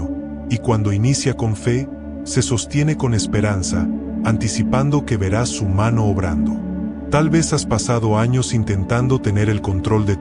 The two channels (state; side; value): identical; both; correlation 1.00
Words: y cuando inicia con fe, se sostiene con esperanza, anticipando que verás su mano obrando. Tal vez has pasado años intentando tener el control de